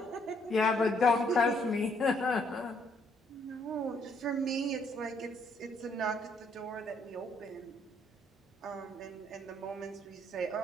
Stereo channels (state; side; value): normal; both; correlation 0.69